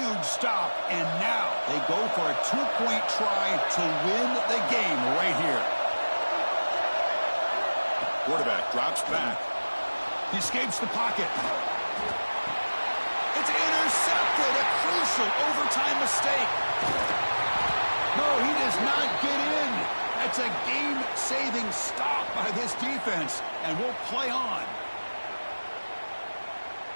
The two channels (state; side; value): inverted; both; correlation -1.00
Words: stop, and now they go for a two-point try to win the game right here. Quarterback drops back. He escapes the pocket. It's intercepted, a crucial overtime mistake. No, he does not get in. That's a game-saving stop by this defense, and we'll play on.